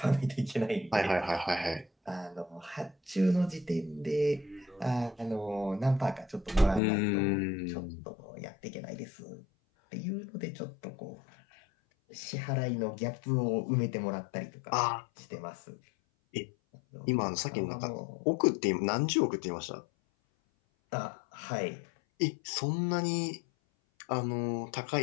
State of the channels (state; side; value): drops out; right; at 6.8 s